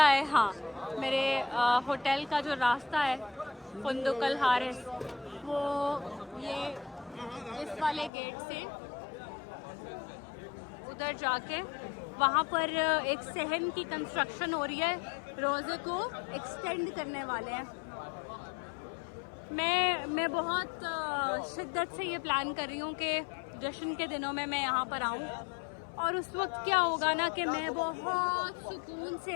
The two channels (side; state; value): right; drops out; at 8.1 s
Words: है, हाँ, मेरे होटल का जो रास्ता है फुंदुकल हारिस, वो ये इस वाले गेट से उधर जाके वहाँ पर एक सहन की कंस्ट्रक्शन हो रही है, रोज़े को एक्सटेंड करने वाले हैं। मैं बहुत शिद्दत से ये प्लान कर रही हूँ कि जश्न के दिनों में मैं यहाँ पर आऊँ, और उस वक्त क्या होगा ना कि मैं बहुत सुकून